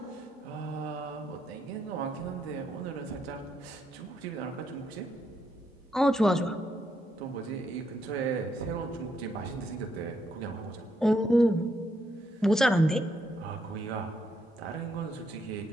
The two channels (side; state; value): both; normal; correlation 0.76